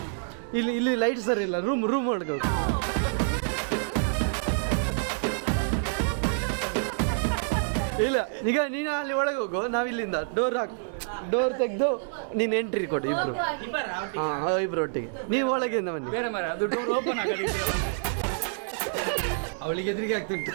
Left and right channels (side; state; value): left; silent; digital silence